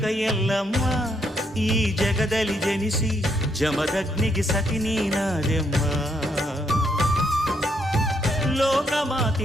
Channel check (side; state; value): both; normal; correlation 0.75